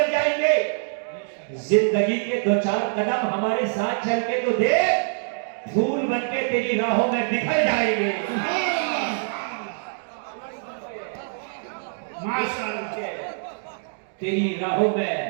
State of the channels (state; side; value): silent; left; digital silence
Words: जाएंगे। जिंदगी के दो चार कदम हमारे साथ चल के तो देख, फूल बनके तेरी राहों में बिखर जाएंगे। माशाअल्लाह, तेरी राहों में